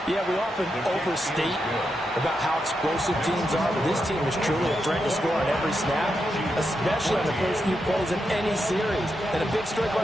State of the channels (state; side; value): normal; both; correlation 0.85